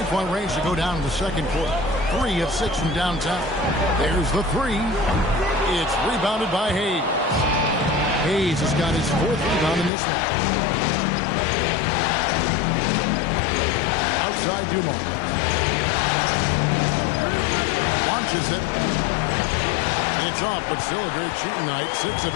range to go down in the second quarter. 3 of 6 from downtown. There's the 3. It's rebounded by Hayes. Hayes has got his 4th rebound in this one. Outside Dumars. Launches it. It's off, but still a great shooting night. 6 of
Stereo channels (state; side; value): drops out; right; at 9.9 s